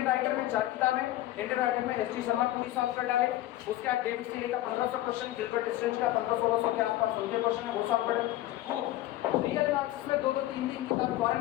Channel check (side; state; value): right; quieter; 15.2 dB